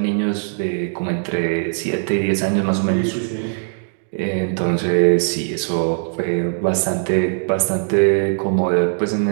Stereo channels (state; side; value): silent; left; digital silence